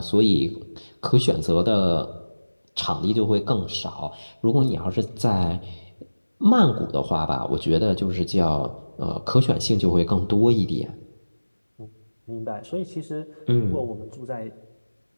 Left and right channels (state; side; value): inverted; both; correlation -1.00